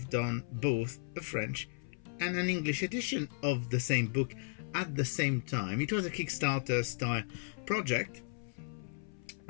done both a French and an English edition of the same book at the same time. It was a Kickstarter style project,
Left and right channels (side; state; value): right; silent; 54 dB below the other